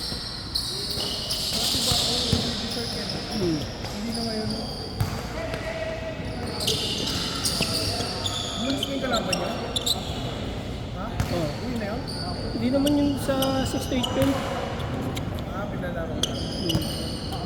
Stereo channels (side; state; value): both; identical; correlation 1.00